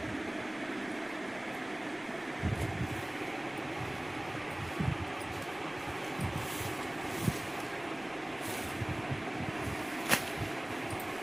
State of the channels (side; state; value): left; noise; rumble, 24 dB below the sound